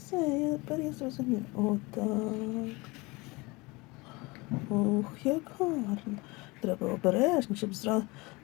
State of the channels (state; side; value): quieter; right; 24.6 dB